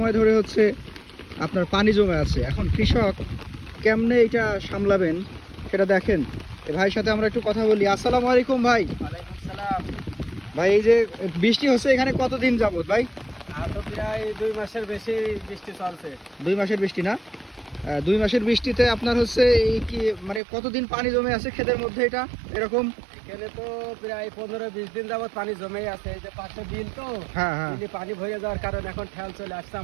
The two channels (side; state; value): left; drops out; at 20.4 s